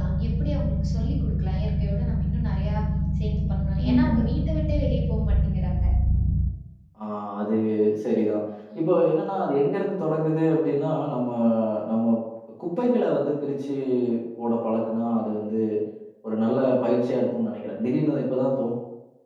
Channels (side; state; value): both; identical; correlation 1.00